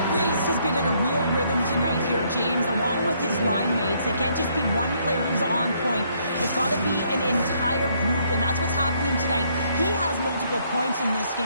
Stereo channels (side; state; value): both; inverted; correlation -0.69